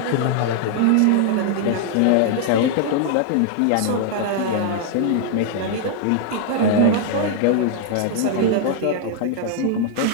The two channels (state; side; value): different; both; correlation 0.00